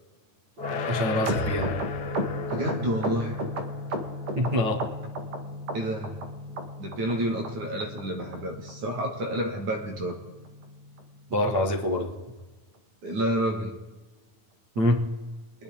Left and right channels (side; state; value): left; late; 9.4 ms